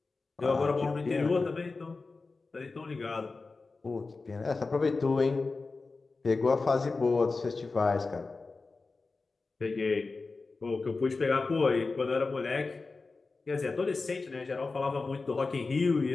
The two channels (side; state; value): right; quieter; 3.9 dB